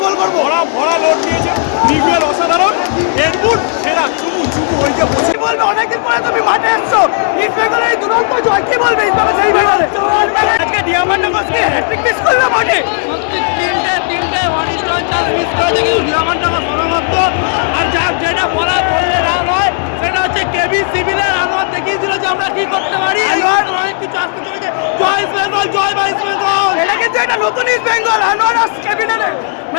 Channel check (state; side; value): silent; right; digital silence